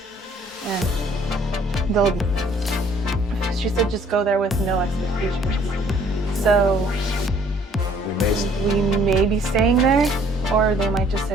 And she said just go there with no expectations. So we may be staying there or they might just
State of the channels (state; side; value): normal; both; correlation 0.60